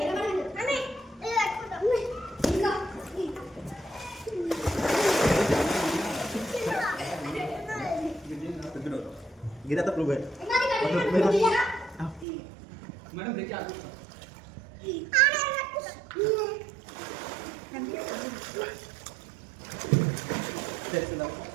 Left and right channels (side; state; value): left; drops out; at 12.2 s